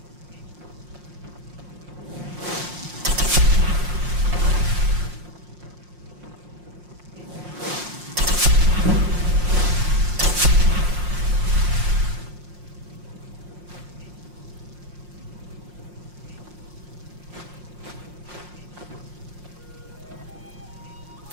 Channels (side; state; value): left; late; 5.6 ms